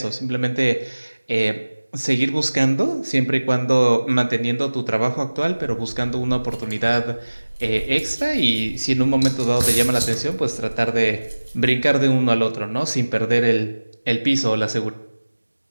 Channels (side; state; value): both; inverted; correlation -1.00